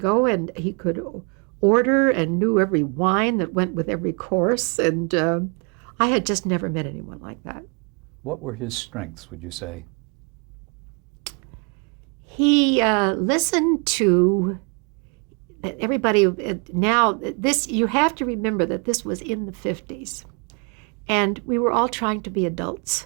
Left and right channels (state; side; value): quieter; left; 34.7 dB